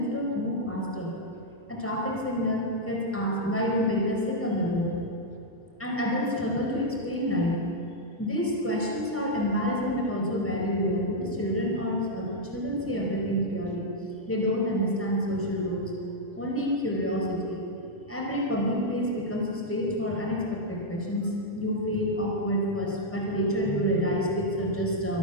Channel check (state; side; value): normal; both; correlation -0.04